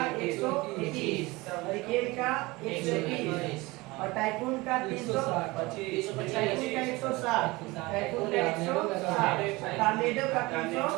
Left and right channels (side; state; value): left; quieter; 22.3 dB